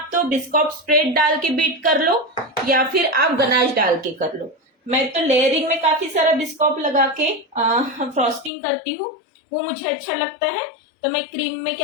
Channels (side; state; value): right; drops out; at 8.5 s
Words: तो बिस्कॉप स्प्रेड डाल के बीट कर लो या फिर आप गनाश डाल के कर लो। मैं तो लेयरिंग में काफी सारा बिस्कॉप लगा के फ्रॉस्टिंग करती हूँ, वो मुझे अच्छा लगता है। तो मैं क्रीम में